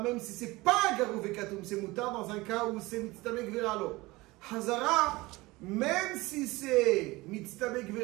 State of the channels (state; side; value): quieter; left; 21.2 dB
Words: même si c'est pas garou vekatoum, c'est moutar dans un cas où c'est mitztamek veralo. Hazara, même si c'est mitztamek